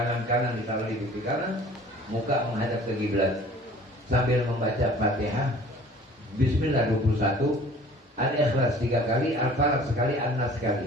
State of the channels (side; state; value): both; normal; correlation 0.49